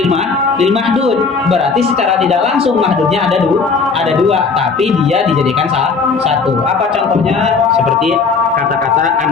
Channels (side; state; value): right; quieter; 4.8 dB